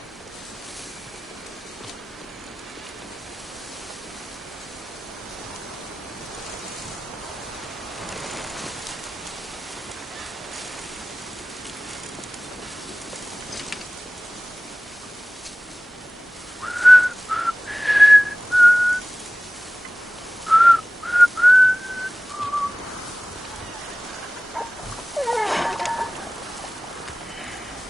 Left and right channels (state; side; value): normal; both; correlation 0.98